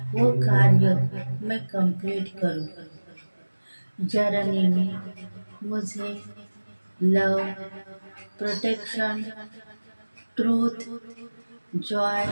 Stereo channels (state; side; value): inverted; both; correlation -1.00